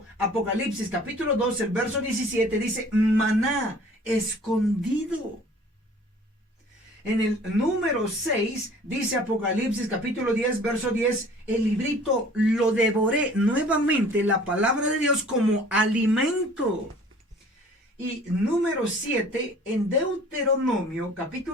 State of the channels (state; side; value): normal; both; correlation 0.50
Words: Apocalipsis capítulo 2, el verso 17 dice maná escondido. En el número 6 dice Apocalipsis capítulo 10, verso 10, el librito lo devoré. Nuevamente la palabra de Dios como alimento. Y número 7, en Deuteronomio